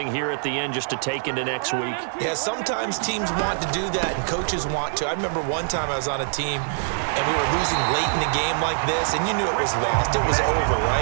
here at the end just to take into next week? Yeah, sometimes teams want to do that and coaches want to. I remember one time I was on a team and we were losing late in the game like this and you knew it was lost. It was over,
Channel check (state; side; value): silent; left; digital silence